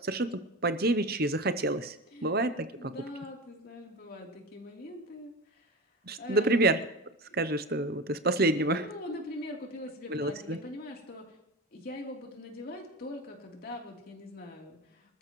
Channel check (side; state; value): both; normal; correlation 0.27